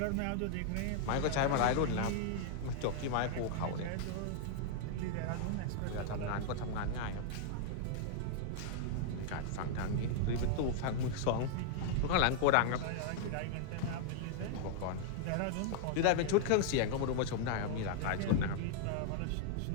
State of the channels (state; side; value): different; both; correlation -0.01